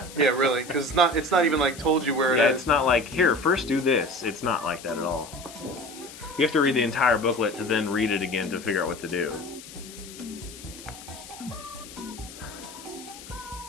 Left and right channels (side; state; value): left; noise; hiss, 16 dB below the sound